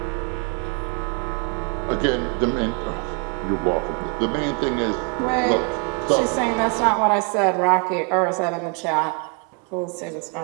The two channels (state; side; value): quieter; left; 36.7 dB